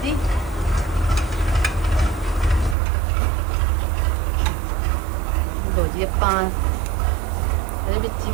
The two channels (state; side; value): drops out; left; at 2.8 s